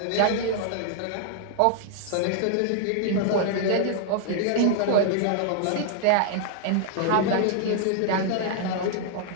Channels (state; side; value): different; both; correlation -0.01